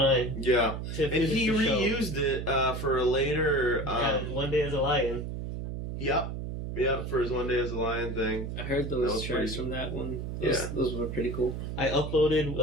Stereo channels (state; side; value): noise; right; hum, 5 dB below the sound